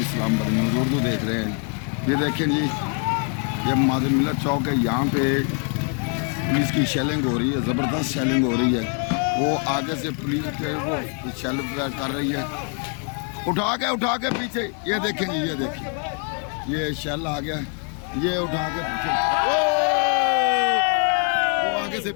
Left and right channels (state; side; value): quieter; right; 40.0 dB